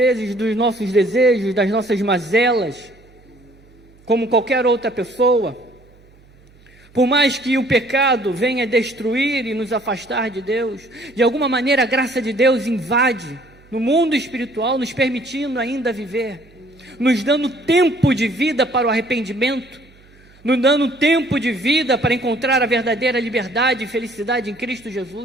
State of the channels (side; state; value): right; noise; hum, 28 dB below the sound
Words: dos nossos desejos, das nossas mazelas, como qualquer outra pessoa. Por mais que o pecado venha destruir e nos afastar de Deus, de alguma maneira a graça de Deus invade no mundo espiritual, nos permitindo ainda viver, nos dando tempo de vida para o arrependimento, nos dando tempo de vida para encontrar a verdadeira liberdade e felicidade em Cristo